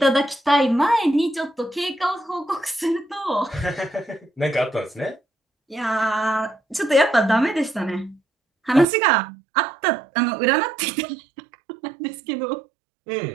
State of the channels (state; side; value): drops out; left; at 8.8 s